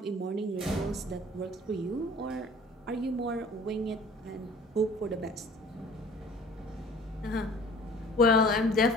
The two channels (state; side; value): normal; both; correlation 0.49